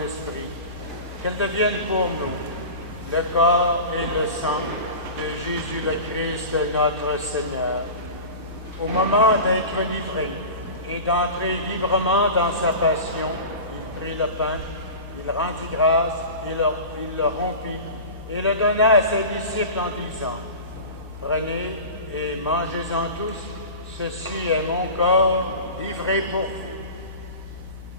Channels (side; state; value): both; inverted; correlation -0.33